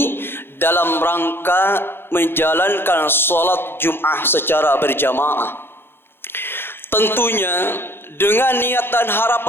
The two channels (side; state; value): right; late; 0.11 ms